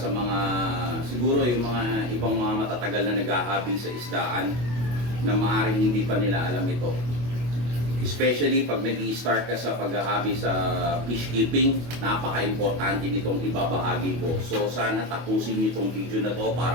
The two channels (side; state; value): left; late; 25 ms